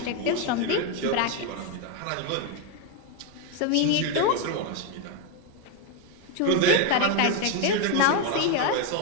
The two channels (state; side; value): different; both; correlation 0.01